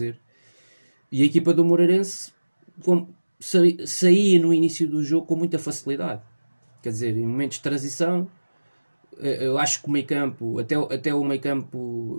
E a equipa do Moreirense saía no início do jogo com muita facilidade. Quer dizer, em momentos de transição, eu acho que o meio-campo, até o meio-campo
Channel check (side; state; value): both; inverted; correlation -1.00